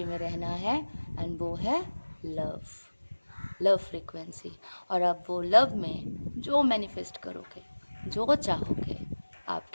में रहना है, एंड वो है लव, लव फ्रीक्वेंसी। और अब वो लव में जो मैनिफेस्ट करोगे, जो चाहोगे,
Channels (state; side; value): inverted; both; correlation -1.00